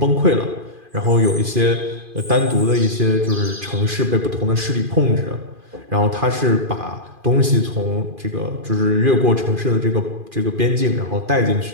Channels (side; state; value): left; late; 2.5 ms